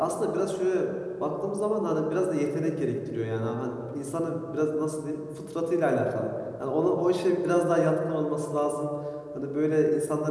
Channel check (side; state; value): both; identical; correlation 1.00